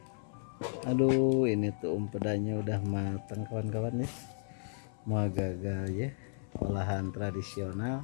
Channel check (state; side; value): silent; right; 55 dB below the other